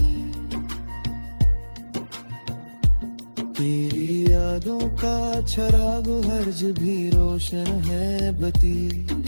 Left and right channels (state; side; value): inverted; both; correlation -1.00